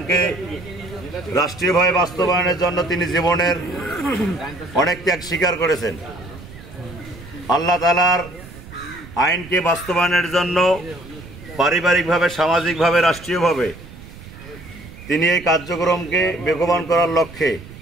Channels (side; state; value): right; noise; rumble, 17 dB below the sound